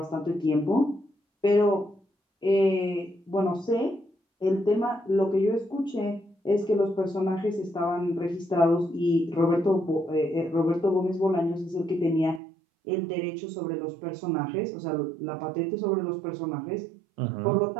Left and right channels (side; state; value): left; drops out; at 12.4 s